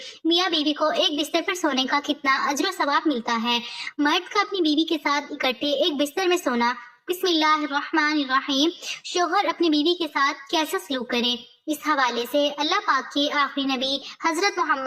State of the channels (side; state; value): both; identical; correlation 1.00